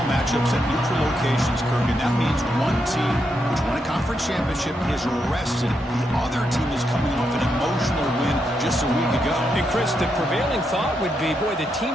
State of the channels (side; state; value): both; normal; correlation 0.82